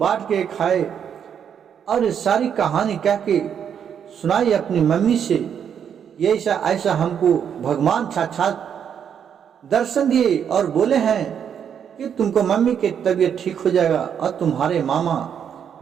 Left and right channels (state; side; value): quieter; left; 8.2 dB